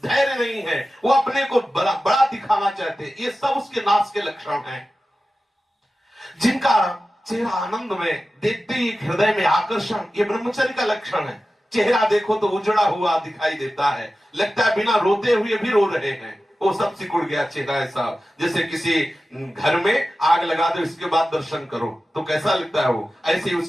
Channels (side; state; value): both; normal; correlation 0.94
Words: धैर्य नहीं है, वो अपने को बड़ा दिखाना चाहते, ये सब उसके नाश के लक्षण हैं। जिनका चेहरा आनंद में, देखते ही हृदय में आकर्षण, ये ब्रह्मचर्य का लक्षण है। चेहरा देखो तो उजड़ा हुआ दिखाई देता है, लगता है बिना रोते हुए भी रो रहे हैं। वो सब सिकुड़ गया चेहरा, ऐसा जैसे किसी घर में आग लगा दो, इसके बाद दर्शन करो तो कैसा लगता है, वो ऐसे ही